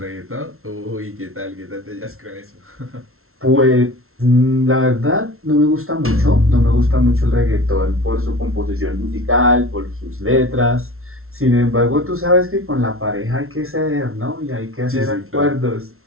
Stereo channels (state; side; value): late; left; 0.62 ms